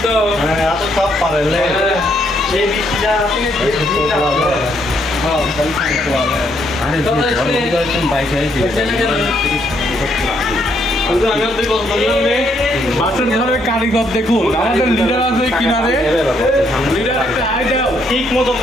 তো, এত সব পারে এই বৃষ্টিটা বাসন ঘরের কারিগর দেখুন, আমাদের লিডার আছে কিনারে, লিডার একটা হাই দাও ঠিক মতো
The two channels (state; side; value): normal; both; correlation 0.72